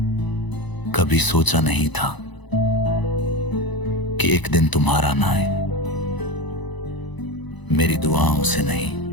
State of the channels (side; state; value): right; late; 1.0 ms